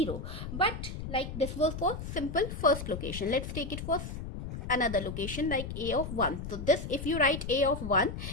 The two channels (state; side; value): noise; left; rumble, 7 dB below the sound